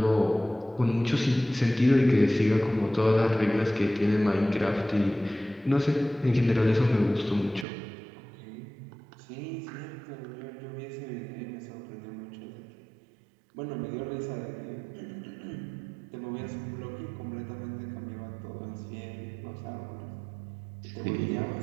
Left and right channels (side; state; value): left; drops out; at 7.7 s